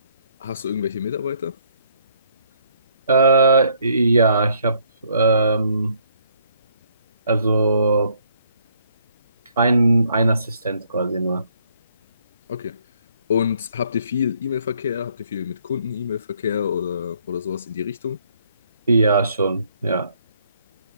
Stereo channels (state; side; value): inverted; both; correlation -0.67